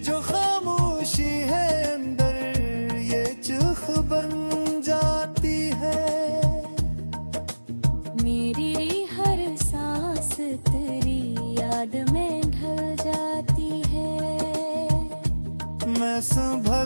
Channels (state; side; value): inverted; both; correlation -1.00